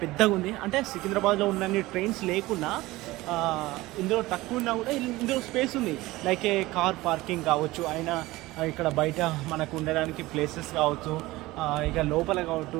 పెద్దగా ఉంది. అంటే సికింద్రాబాద్లో ఉన్నన్ని ట్రైన్స్ లేకున్నా ఇందులో తక్కువ ఉన్నా కూడా ఇందులో స్పేస్ ఉంది. లైక్ ఏ కార్ పార్కింగ్ కావచ్చు, అయినా ఇక్కడ బయట మనకు ఉండడానికి ప్లేసెస్ కావచ్చు, ఇక లోపల కావచ్చు.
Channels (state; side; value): quieter; left; 19.1 dB